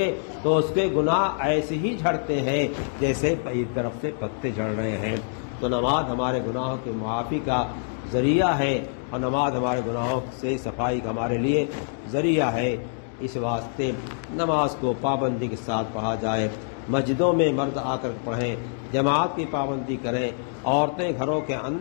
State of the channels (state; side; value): silent; right; digital silence